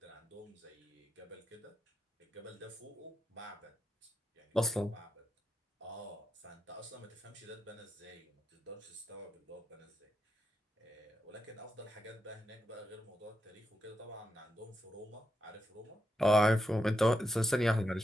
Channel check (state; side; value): normal; both; correlation 0.85